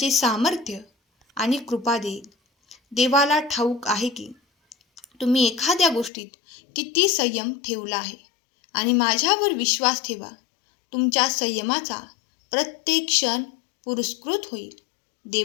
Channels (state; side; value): drops out; right; at 6.1 s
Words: सामर्थ्य आणि कृपा देईल. देवाला ठाऊक आहे की तुम्ही एखाद्या गोष्टीत किती संयम ठेवला आहे आणि माझ्यावर विश्वास ठेवा. तुमच्या संयमाचा प्रत्येक क्षण पुरस्कृत होईल.